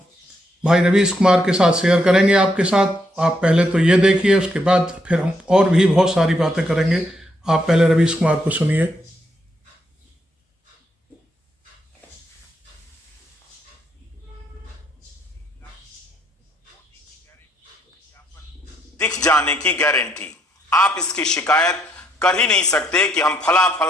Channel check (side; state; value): both; normal; correlation 0.75